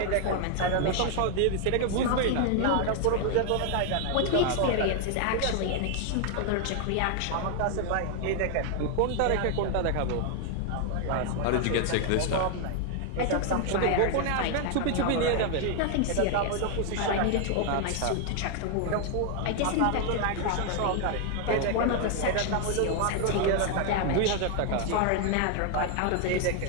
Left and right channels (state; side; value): different; both; correlation 0.00